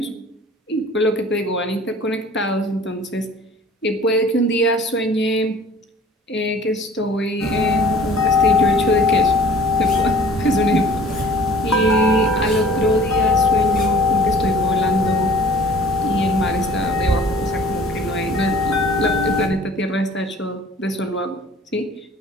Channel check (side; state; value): both; normal; correlation 0.49